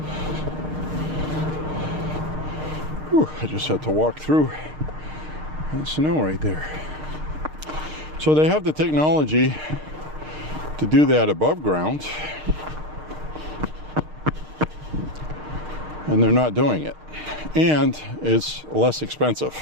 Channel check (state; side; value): late; left; 6.5 ms